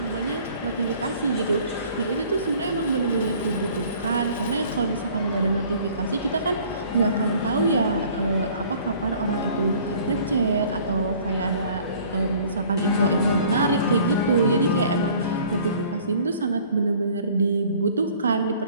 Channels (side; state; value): both; inverted; correlation -0.53